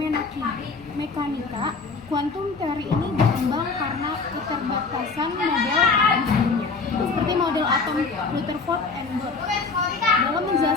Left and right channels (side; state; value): right; quieter; 4.4 dB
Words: mekanika kuantum. Teori ini berkembang karena keterbatasan model atom sebelumnya, seperti model atom Rutherford and Bohr, dalam